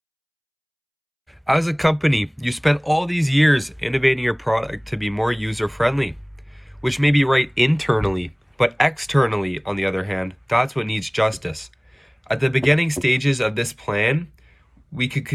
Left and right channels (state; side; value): identical; both; correlation 1.00